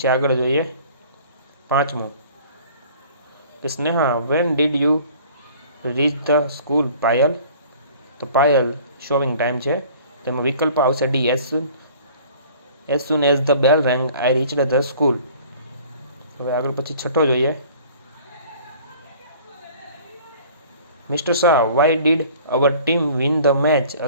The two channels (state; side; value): inverted; both; correlation -0.50